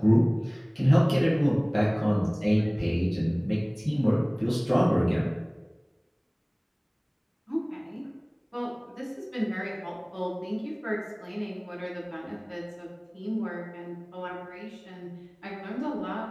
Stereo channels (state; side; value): identical; both; correlation 1.00